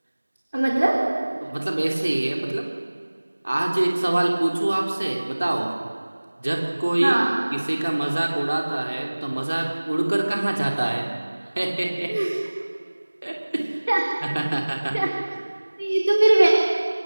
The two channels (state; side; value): inverted; both; correlation -1.00